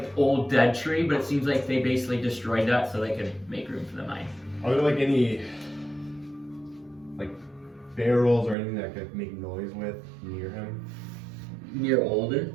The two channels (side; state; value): left; drops out; at 8.6 s